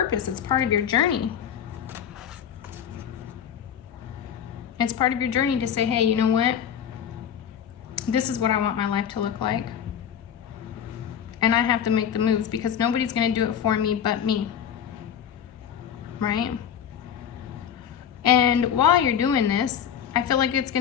It's part of your journey. It's part of your journey to say, hey, you know what? This is what I want my life to look like. And I have to make the moves because nobody's going to do it for me but me. Right? And while you're doing this, I feel like it's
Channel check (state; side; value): quieter; right; 8.7 dB